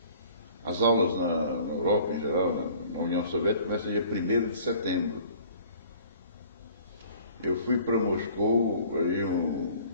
As aulas na Europa, em geral, na União Soviética, começam dia 1º de setembro. Eu fui para Moscou aí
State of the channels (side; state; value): both; inverted; correlation -0.51